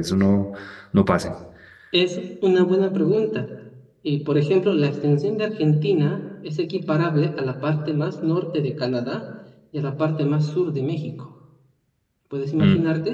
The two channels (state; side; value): identical; both; correlation 1.00